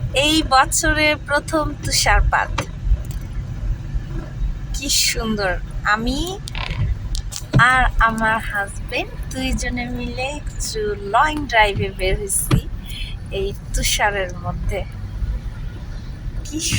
এই বছরে প্রথম তুষারপাত, কি সুন্দর। আমি আর আমার হাজবেন্ড দুইজনে মিলে একটু লং ড্রাইভে বের হয়েছি এই তুষারের মধ্যে। কি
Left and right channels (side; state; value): both; identical; correlation 1.00